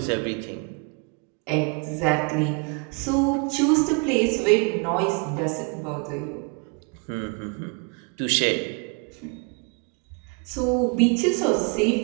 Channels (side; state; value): left; quieter; 34.4 dB